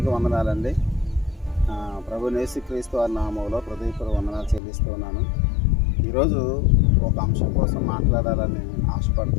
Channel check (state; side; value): drops out; right; at 4.6 s